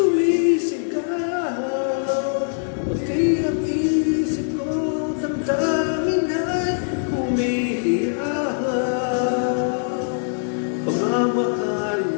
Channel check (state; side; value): silent; right; 64 dB below the other